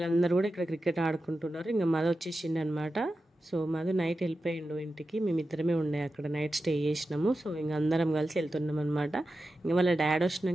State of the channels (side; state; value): both; normal; correlation 0.92